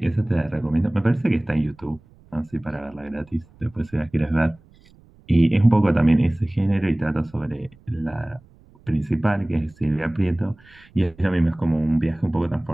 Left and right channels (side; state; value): right; noise; rumble, 28 dB below the sound